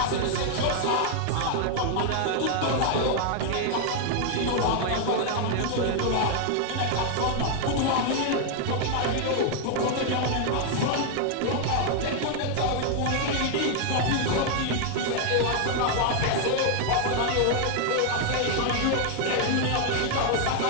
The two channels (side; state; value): both; different; correlation 0.00